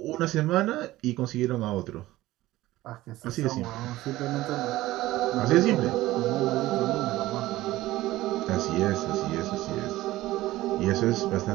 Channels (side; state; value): left; quieter; 16.8 dB